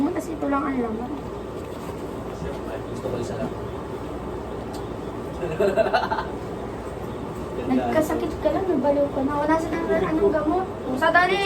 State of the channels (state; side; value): identical; both; correlation 1.00